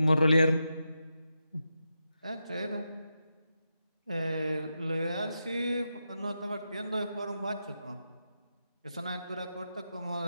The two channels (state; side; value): inverted; both; correlation -0.87